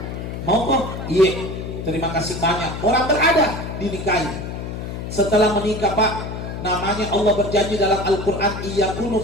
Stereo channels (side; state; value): left; noise; hum, 7 dB below the sound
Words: mau kok? Iya, terima kasih banyak. Orang berada dinikahi. Setelah menikah Pak, namanya Allah berjanji dalam Al-Quran, iyakunu